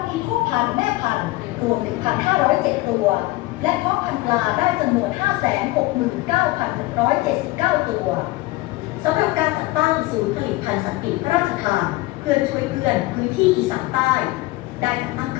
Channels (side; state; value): right; quieter; 19.4 dB